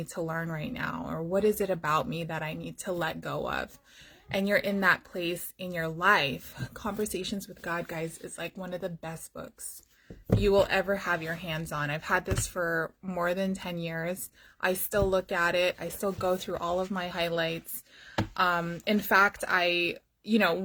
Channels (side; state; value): both; identical; correlation 1.00